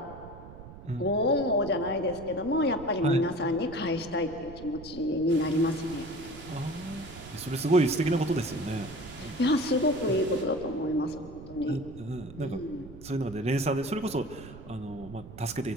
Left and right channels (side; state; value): right; noise; rumble, 15 dB below the sound